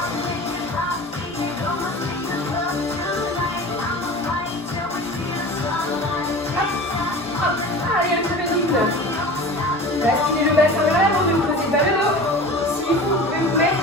Hop, hop. Allez, un petit peu de rythme. Basculez le bassin vers l'avant, ne posez pas le dos. Si vous pouvez vous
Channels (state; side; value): normal; both; correlation 0.36